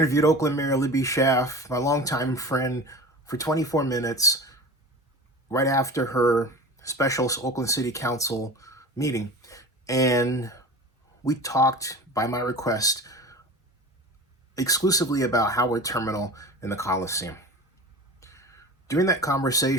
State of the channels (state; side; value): normal; both; correlation 0.34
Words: Oakland Mayor Libby Schaaf, my longtime friend, for 24 minutes right after her special Oakland City Council meeting. And we talked, by my request, exclusively about Howard Terminal and the Coliseum. During that